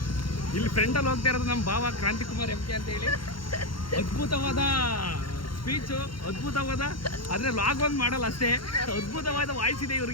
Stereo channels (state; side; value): late; right; 0.73 ms